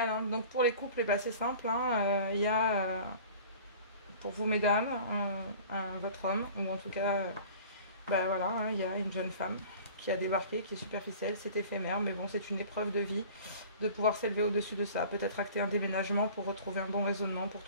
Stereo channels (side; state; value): both; inverted; correlation -0.44